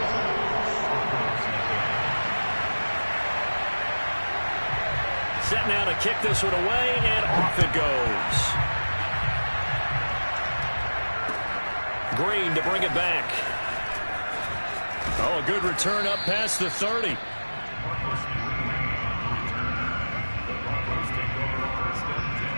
Set now to kick this one away, and off it goes. Green to bring it back. Oh, a good return up past the 30.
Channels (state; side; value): inverted; both; correlation -1.00